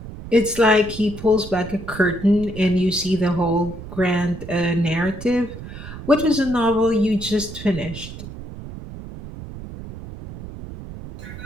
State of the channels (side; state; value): right; noise; rumble, 12 dB below the sound